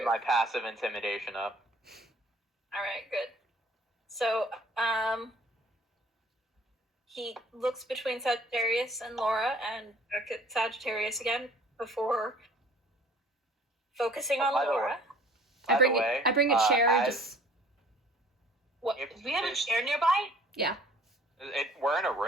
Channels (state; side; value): normal; both; correlation 0.53